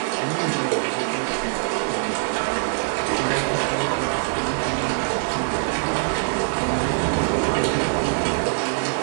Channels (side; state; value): left; silent; 63 dB below the other